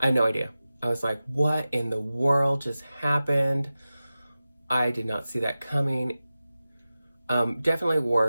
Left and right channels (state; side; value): inverted; both; correlation -0.95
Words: idea. I was like, what in the world just happened? I did not see that coming. Definitely